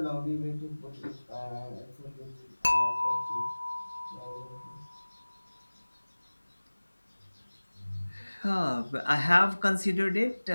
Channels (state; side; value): inverted; both; correlation -1.00